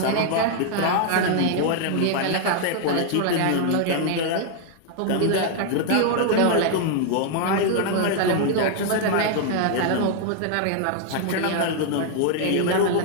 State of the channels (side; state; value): both; different; correlation 0.00